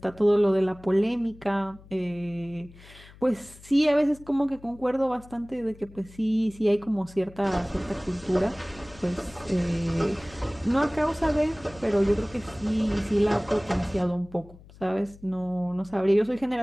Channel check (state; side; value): noise; left; hum, 22 dB below the sound